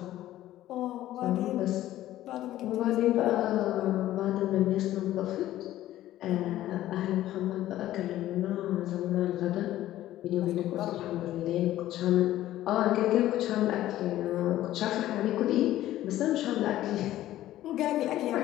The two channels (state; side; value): quieter; right; 14.0 dB